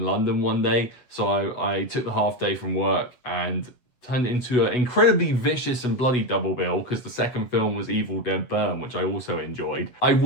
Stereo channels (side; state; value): right; late; 8.2 ms